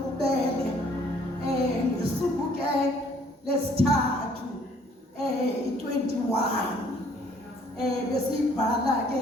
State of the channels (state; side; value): normal; both; correlation 0.61